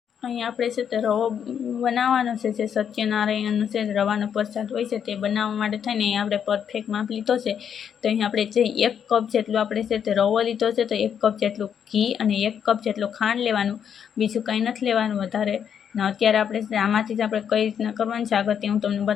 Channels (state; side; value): quieter; right; 8.2 dB